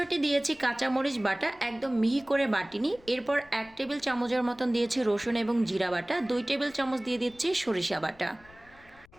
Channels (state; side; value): noise; left; rumble, 26 dB below the sound